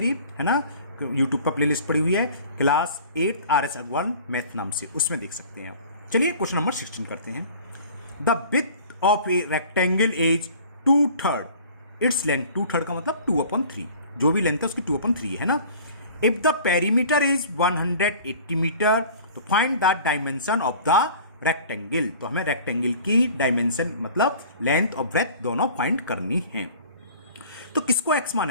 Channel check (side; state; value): both; inverted; correlation -0.46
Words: है ना, यूट्यूब पर प्लेलिस्ट पड़ी हुई है class 8th RS Agarwal math नाम से, उसमें देख सकते हैं आप। चलिए क्वेश्चन नंबर 16 करते हैं। The width of a rectangle is 2/3, its length 2/3 का मतलब 2/3, जो भी लेंथ है उसकी 2/3 है ना। If the perimeter is 180 metre तो find the dimension of the rectangle. तो हमें रेक्टेंगल की डायमेंशन मतलब लेंथ और ब्रेथ दोनों फाइंड करनी है। तो किसको एक्स